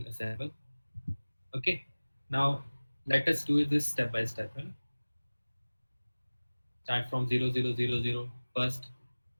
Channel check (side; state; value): both; inverted; correlation -1.00